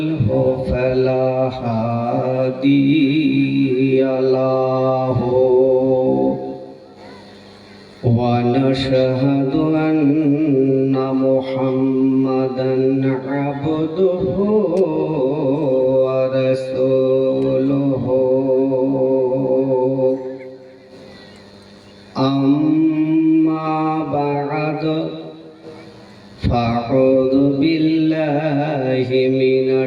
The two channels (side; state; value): both; identical; correlation 1.00